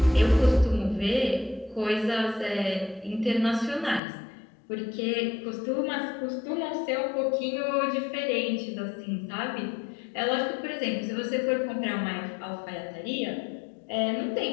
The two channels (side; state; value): right; drops out; at 4.0 s